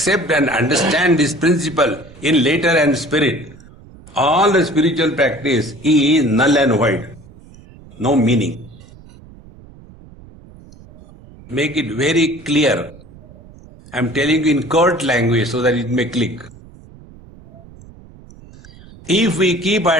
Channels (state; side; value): noise; right; rumble, 22 dB below the sound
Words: and understand this principle in letter and spirit, all the spiritual practice is null and void. No meaning. Make it very clear. I am telling you in curt language so that it may click. If we keep